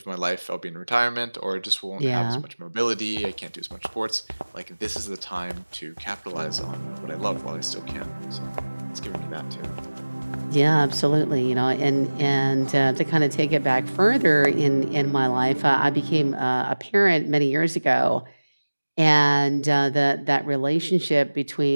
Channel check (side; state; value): both; inverted; correlation -1.00